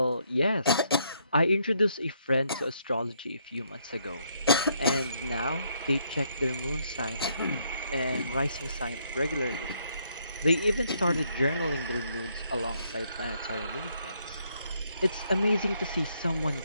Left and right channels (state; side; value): inverted; both; correlation -0.72